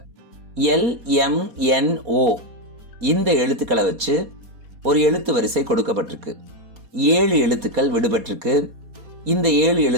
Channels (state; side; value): late; left; 4.2 ms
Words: LMNO இந்த எழுத்துக்களை வச்சு ஒரு எழுத்து வரிசை கொடுக்கப்பட்டிருக்கு. 7 எழுத்துக்கள் விடுபட்டிருக்கு. இந்த 7